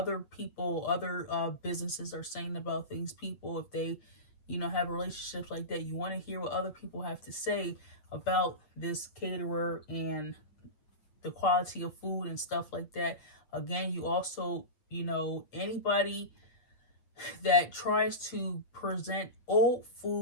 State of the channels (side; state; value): right; late; 8.5 ms